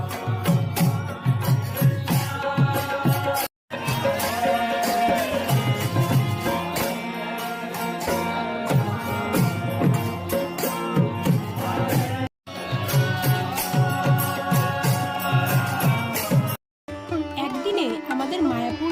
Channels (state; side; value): identical; both; correlation 1.00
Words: একদিনে আমাদের মায়াপুর